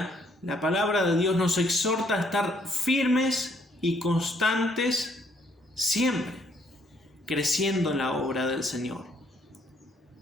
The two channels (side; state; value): both; normal; correlation 0.68